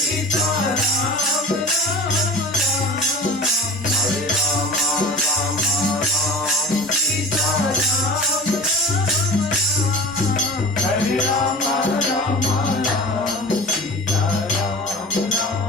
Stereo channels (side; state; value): both; normal; correlation 0.37